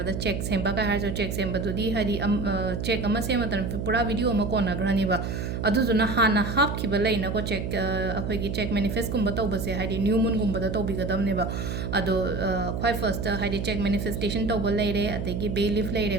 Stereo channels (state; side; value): noise; right; hum, 3 dB below the sound